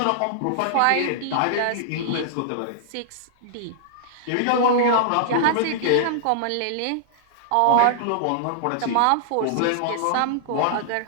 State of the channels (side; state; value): both; different; correlation -0.01